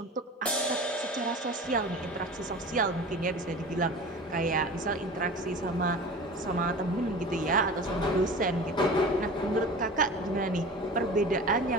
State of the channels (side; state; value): both; normal; correlation 0.36